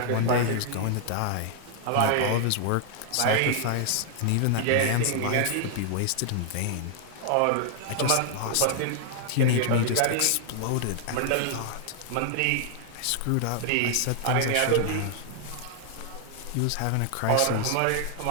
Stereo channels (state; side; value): different; both; correlation 0.00